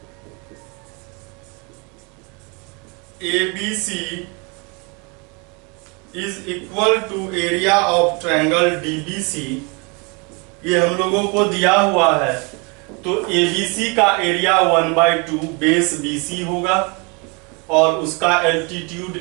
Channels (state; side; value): quieter; left; 31.1 dB